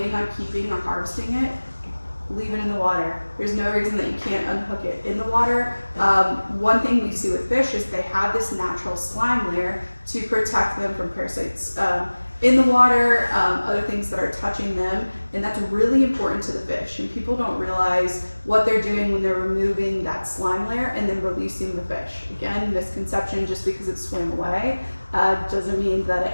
on keeping or harvesting it, leave it in the water. There's no reason that you can't unhook it in the water. One thing we see with fish is they have this natural slime layer to protect them from parasites in the water, other things that are touching them, and that's really important to the fish. And people don't realize what they're doing when they're removing that slime layer and then releasing the fish. Again, misconception, just because it swam away doesn't mean that it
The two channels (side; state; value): both; inverted; correlation -1.00